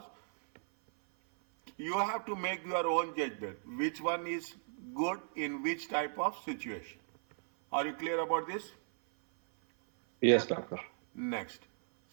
you have to make your own judgment. Which one is good in which type of situation? Are you clear about this? Yes, doctor. Next,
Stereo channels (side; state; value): left; silent; 54 dB below the other